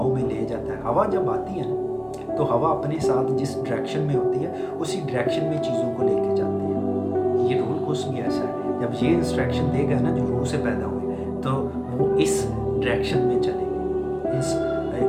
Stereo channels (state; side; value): identical; both; correlation 1.00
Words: में ले जाता है। हवा जब आती है ना तो हवा अपने साथ जिस डायरेक्शन में होती है उसी डायरेक्शन में चीज़ों को लेके जाती है। ये रूह कुद्स भी ऐसा है, जब ये इंस्ट्रक्शन देगा ना जो रूह से पैदा हुए तो वो इस डायरेक्शन में चलेंगे,